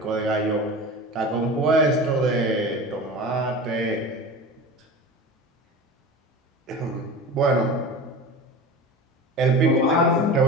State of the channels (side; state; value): both; normal; correlation 0.32